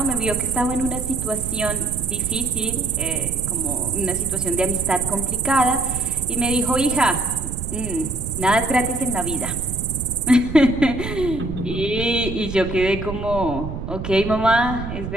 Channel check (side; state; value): right; noise; rumble, 7 dB below the sound